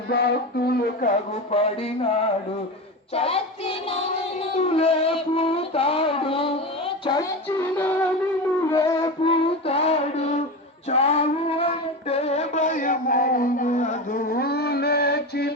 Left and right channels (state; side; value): normal; both; correlation 0.23